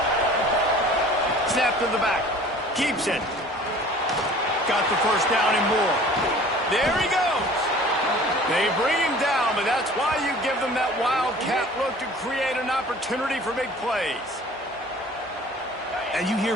Snap to the back. Keeps it. Got the first down and more. There he goes. They bring him down, but that's why you give them that wildcat look to create an opportunity for big plays. And you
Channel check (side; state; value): both; normal; correlation 0.47